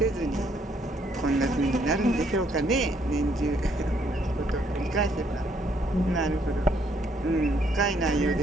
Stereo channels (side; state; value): both; normal; correlation 0.69